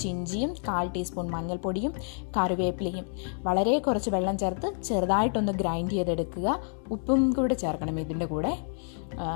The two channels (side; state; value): right; silent; 58 dB below the other